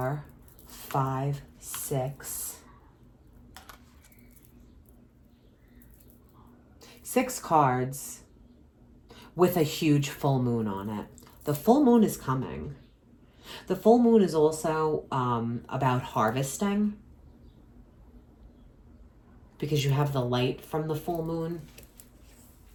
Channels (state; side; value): identical; both; correlation 1.00